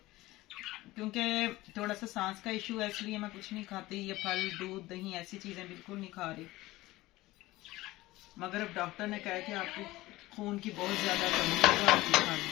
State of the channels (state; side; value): quieter; right; 18.4 dB